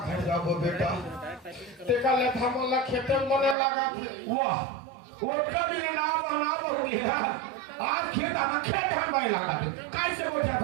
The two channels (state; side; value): drops out; left; at 3.6 s